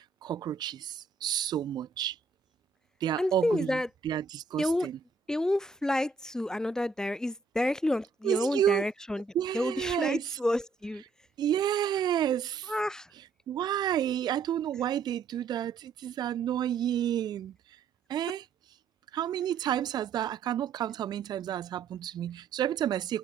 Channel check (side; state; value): left; quieter; 4.8 dB